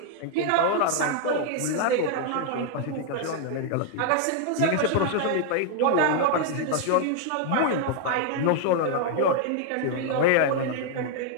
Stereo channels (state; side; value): different; both; correlation 0.00